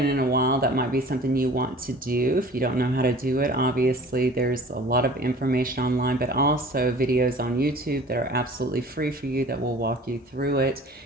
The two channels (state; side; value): normal; both; correlation 0.45